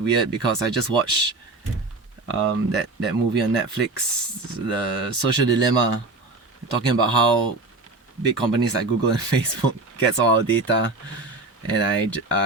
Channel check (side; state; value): left; quieter; 3.3 dB